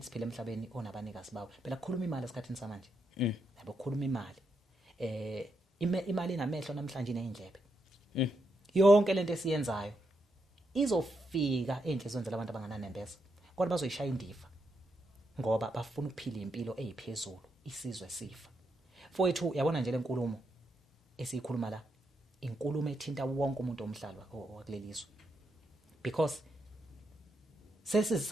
emhlabeni onabanikazi bawo. Phela kukhuluma imali esikhathini samanje. Yabo kukhuluma imali. Imali inamehlo namhlanje nezindlebe. Yonke lento esiyenzayo izofika enhlizweni zabantu abangananembeza kodwa bazoyishaya indiva ngoba bafuna ukuphila impilo eziphezulu, isizwe sifa. Mfowethu yabona nje lenkulumo esiyikhuluma la, inkulumo ethinta wonke umuntu omhlaba wakulelizwe because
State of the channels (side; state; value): both; normal; correlation 0.81